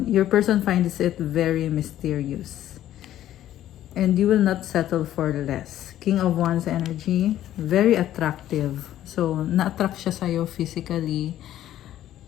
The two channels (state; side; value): quieter; right; 12.5 dB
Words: Your person finds it very mysterious. And you will not settle for less. King of Wands energy, very attractive. So, na-attract siya sa'yo physically.